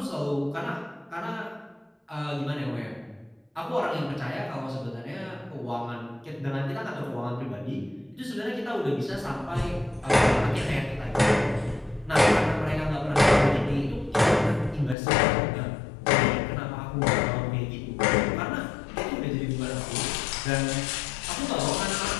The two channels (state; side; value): drops out; right; at 15.0 s